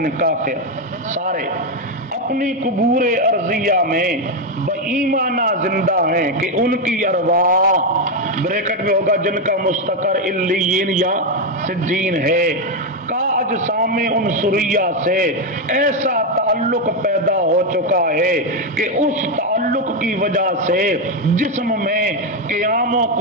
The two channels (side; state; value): both; normal; correlation 0.06